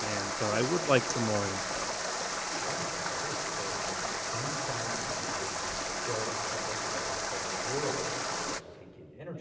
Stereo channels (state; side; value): identical; both; correlation 1.00